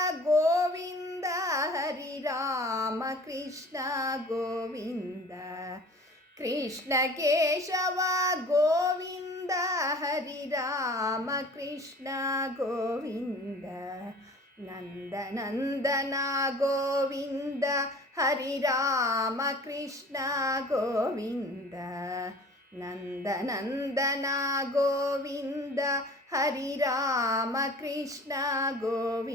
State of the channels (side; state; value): both; normal; correlation 0.45